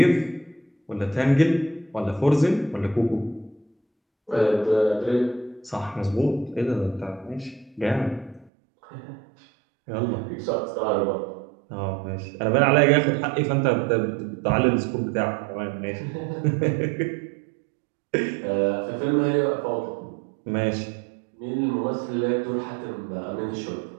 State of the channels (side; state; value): left; drops out; at 8.5 s